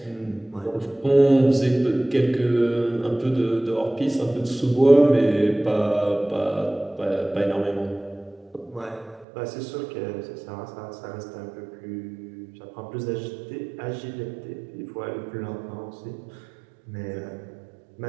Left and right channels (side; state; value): left; drops out; at 9.2 s